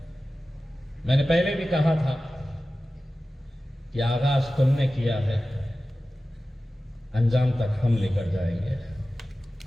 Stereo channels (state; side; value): normal; both; correlation 0.95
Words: मैंने पहले भी कहा था कि आगाज तुमने किया है, अंजाम तक हम लेकर जाएंगे।